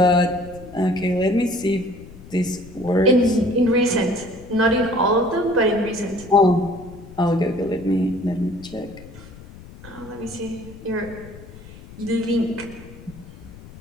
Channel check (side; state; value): left; noise; rumble, 18 dB below the sound